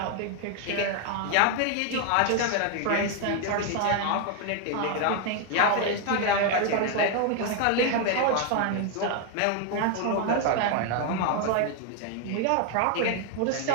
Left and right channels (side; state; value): both; different; correlation 0.00